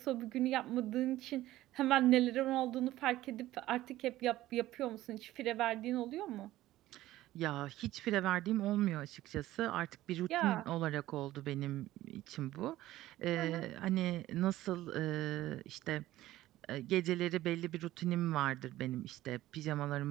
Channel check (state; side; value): quieter; left; 15.4 dB